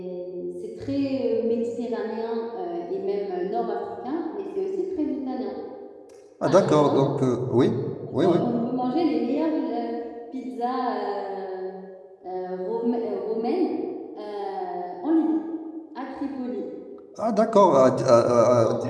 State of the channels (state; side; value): identical; both; correlation 1.00